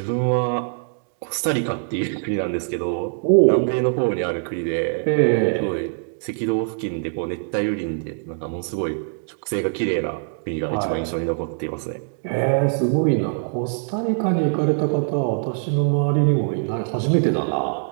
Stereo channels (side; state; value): left; silent; digital silence